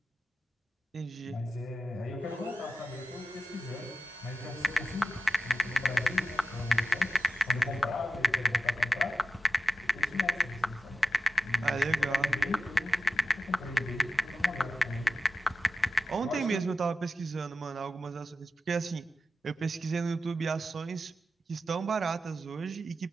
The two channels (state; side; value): normal; both; correlation 0.92